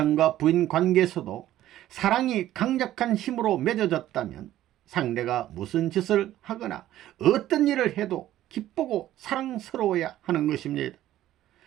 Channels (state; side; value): quieter; left; 13.5 dB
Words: 부인 관계에서도 사랑이 강력한 힘으로 맺어졌다면 상대가 무슨 짓을 하거나 어떤 일을 해도 기쁘고 사랑스러워야 하는 것입니다.